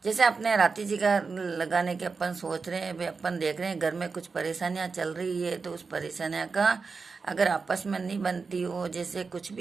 जैसे अपने राती जी का लगाने के अपन सोच रहे हैं, भाई अपन देख रहे हैं घर में कुछ परेशानियां चल रही है, तो उस परेशानियां का अगर आपस में नहीं बनती हो, जैसे कुछ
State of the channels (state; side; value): quieter; left; 4.7 dB